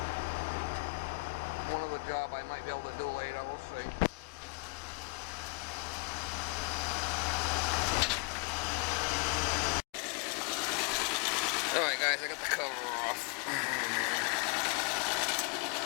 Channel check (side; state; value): right; quieter; 34.3 dB